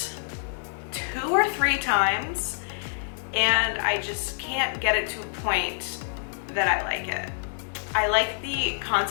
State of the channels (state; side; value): silent; right; digital silence